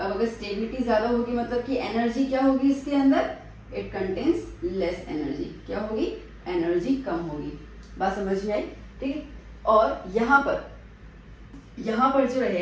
अगर स्टेबिलिटी ज्यादा होगी मतलब कि एनर्जी क्या होगी इसके अंदर, इट कंटेन्स लेस एनर्जी, क्या होगी, एनर्जी कम होगी। बात समझ में आई, ठीक है। और यहाँ पर जो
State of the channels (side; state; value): both; identical; correlation 1.00